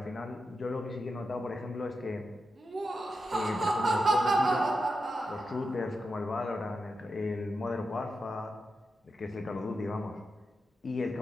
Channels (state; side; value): normal; both; correlation 0.88